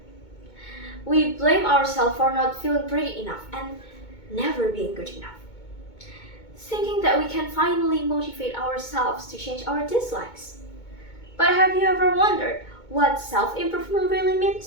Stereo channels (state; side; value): late; right; 2.2 ms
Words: We blame ourselves for not feeling pretty enough and never being good enough, thinking that we can finally motivate ourselves to change our dislikes. But have you ever wondered what self-improvement really